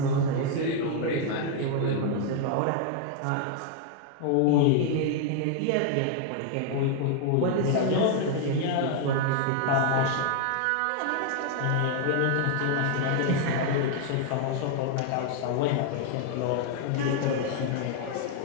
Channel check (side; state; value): both; different; correlation 0.00